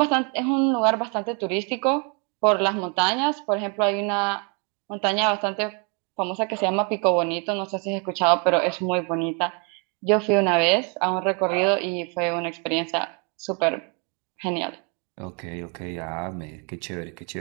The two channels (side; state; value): left; quieter; 35.6 dB